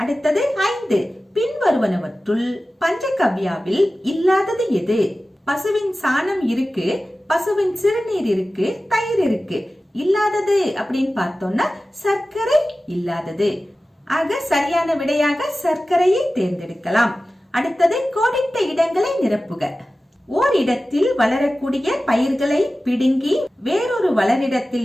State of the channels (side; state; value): both; normal; correlation 0.95